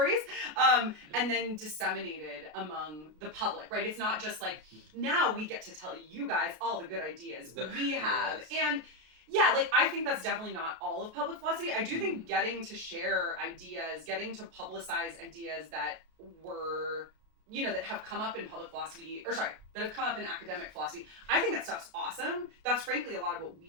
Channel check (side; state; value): left; late; 33 ms